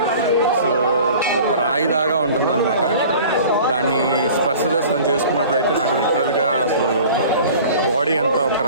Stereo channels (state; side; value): inverted; both; correlation -0.44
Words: సో ఒక రాయిదాగా ఉంటుంది అనమాట. దాన్ని స్పర్శ దర్శనం చేసుకున్నప్పుడు అయితే నాకు లిటరల్గా అసలు బాడీ అంతా ఒక